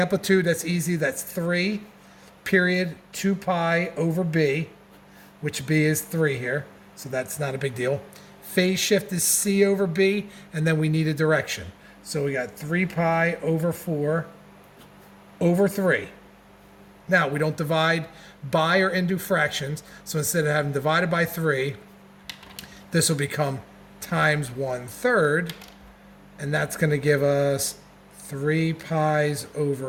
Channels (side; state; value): both; identical; correlation 1.00